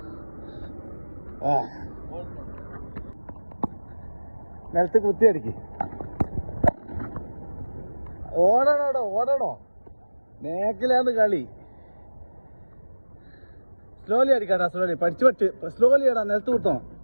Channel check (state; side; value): inverted; both; correlation -1.00